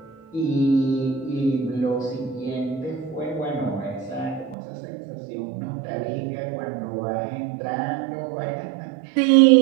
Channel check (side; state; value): left; drops out; at 4.5 s